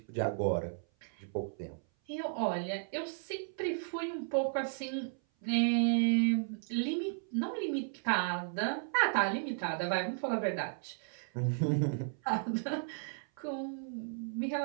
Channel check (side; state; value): left; silent; 55 dB below the other